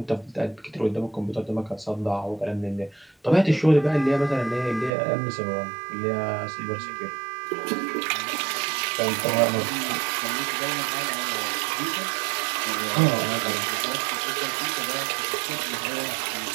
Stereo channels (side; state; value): left; drops out; at 4.9 s